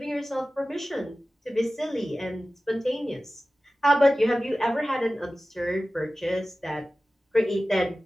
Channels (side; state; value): both; normal; correlation 0.96